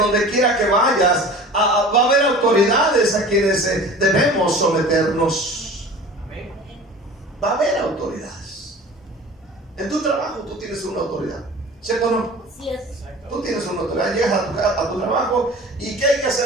quiera que vayas, va a haber autoridades a quienes debemos someternos. Amén. Va a haber autoridades. En tu trabajo tú tienes una autoridad, ¿cierto o no? Sí es. Tú tienes una autoridad. Llegas a tu trabajo, y ¿qué hay que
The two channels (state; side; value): normal; both; correlation 0.40